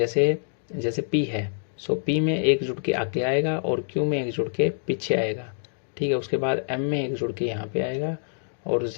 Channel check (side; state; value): right; silent; digital silence